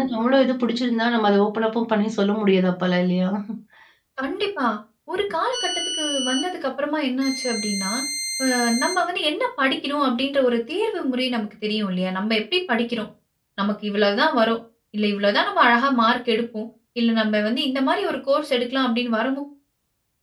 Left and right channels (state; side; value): identical; both; correlation 1.00